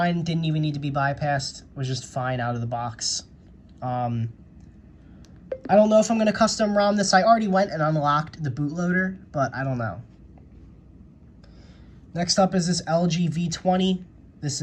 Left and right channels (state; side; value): identical; both; correlation 1.00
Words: didn't even need to be bypassed, was just fine out of the box. I don't know if I'm going to custom ROM this. I already went and unlocked the bootloader, but I don't know. Next up is this LG V20. This